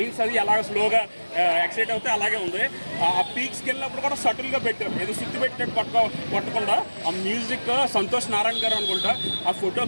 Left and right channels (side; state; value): both; inverted; correlation -1.00